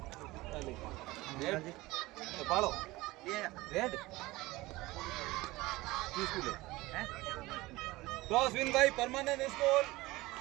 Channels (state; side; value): quieter; left; 20.0 dB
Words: रेड पालो रेड किस को ले cross win by permanent school